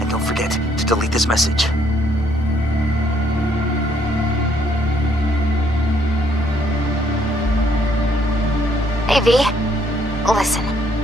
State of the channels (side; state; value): both; normal; correlation 0.68